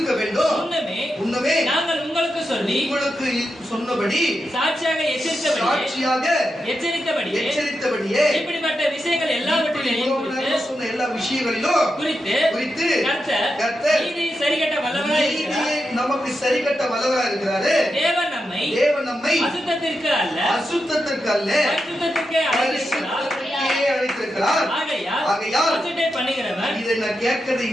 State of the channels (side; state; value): both; normal; correlation 0.87